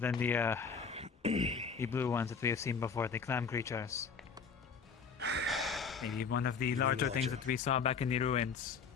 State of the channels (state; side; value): quieter; right; 5.6 dB